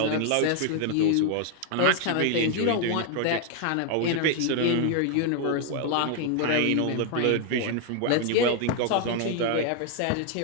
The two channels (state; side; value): different; both; correlation 0.00